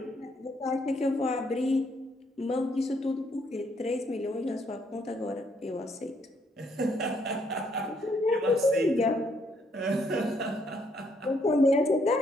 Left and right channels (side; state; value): both; normal; correlation 0.71